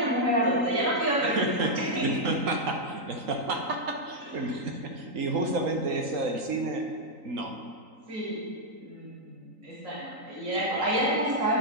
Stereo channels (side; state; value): left; late; 3.9 ms